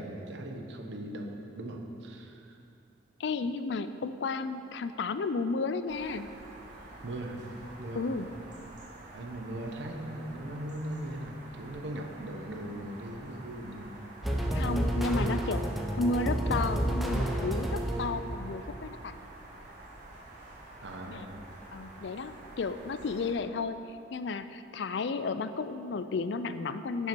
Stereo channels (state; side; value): normal; both; correlation 0.46